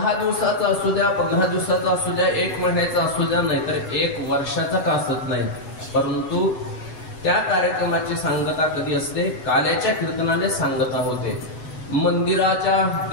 दिवसाचा असू द्या, 15 दिवसाचा असू द्या, 1 महिन्याचा असू द्या, नाहीतर 1 वर्षाचा का असत नाही, परंतु त्या कार्यक्रमाची सांगता कधी असते? काल्याच्या कीर्तनाने सांगता होते. मंदिराच्या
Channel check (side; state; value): right; late; 8.0 ms